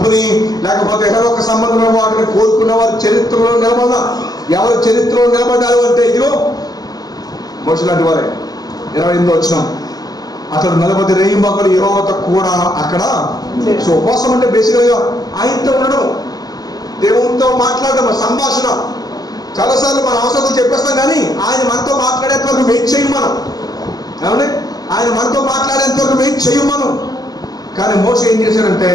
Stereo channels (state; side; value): late; right; 0.18 ms